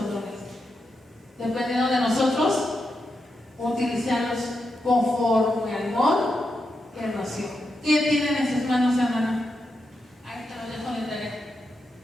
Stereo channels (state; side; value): normal; both; correlation 0.86